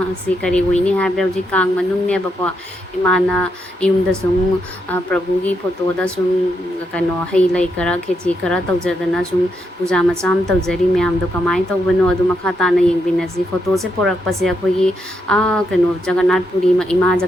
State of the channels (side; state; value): both; normal; correlation 0.80